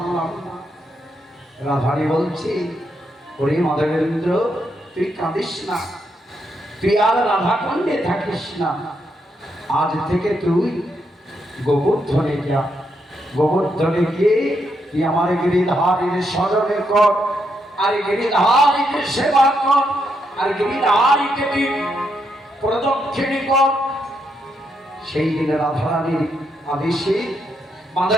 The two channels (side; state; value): both; normal; correlation 0.79